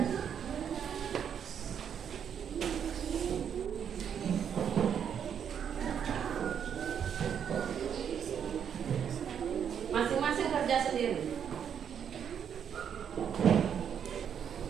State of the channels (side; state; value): left; quieter; 8.2 dB